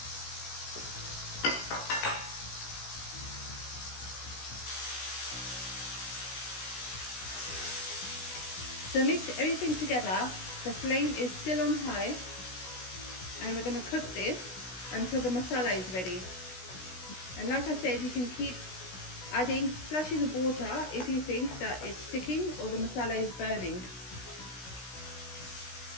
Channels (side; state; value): right; late; 16 ms